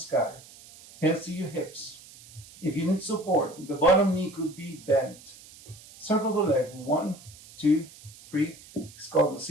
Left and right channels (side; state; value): right; noise; hiss, 21 dB below the sound